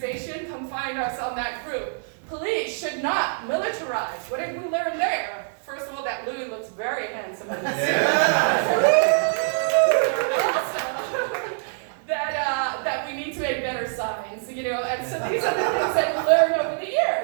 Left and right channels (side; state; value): left; silent; digital silence